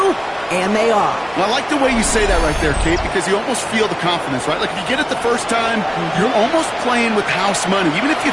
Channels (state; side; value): identical; both; correlation 1.00